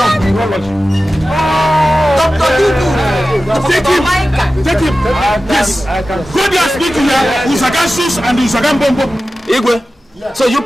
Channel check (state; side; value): normal; both; correlation 0.94